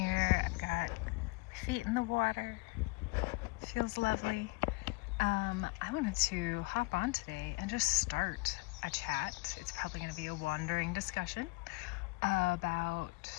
I've got my feet in the water. Feels lovely. I wanted to hop on today and just start a chat. It's probably going to be a wandering discussion about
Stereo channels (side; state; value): right; quieter; 25.0 dB